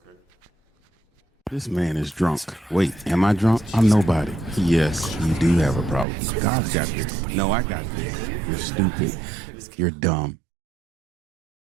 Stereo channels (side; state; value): left; drops out; at 6.1 s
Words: Okay. This man is drunk. Wait, am I drunk? I'm nobody. Yes, you do have a problem. God's got this. No, I got this. You're stupid. You're dumb.